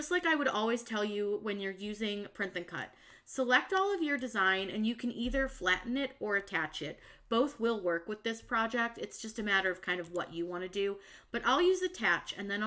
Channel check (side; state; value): both; identical; correlation 1.00